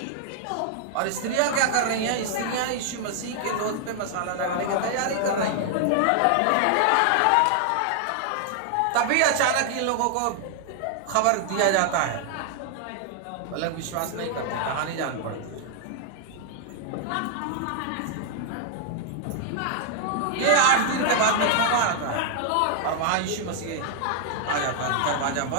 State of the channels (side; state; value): both; different; correlation 0.00